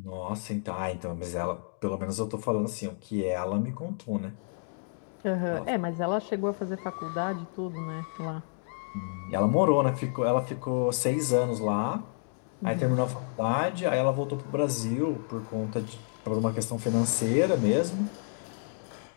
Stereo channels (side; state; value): right; silent; digital silence